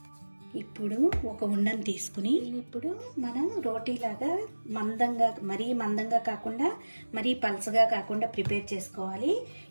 ఇప్పుడు ఒక ఉండను తీసుకుని ఇప్పుడు మనం రోటీలాగా మందంగా, మరీ మందంగా కాకుండా మరీ పలసగా కాకుండా ప్రిపేర్ చేసుకోవాలి.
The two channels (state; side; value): inverted; both; correlation -1.00